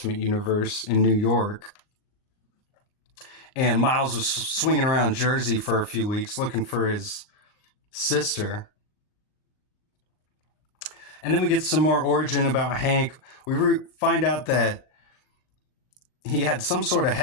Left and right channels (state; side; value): late; right; 39 ms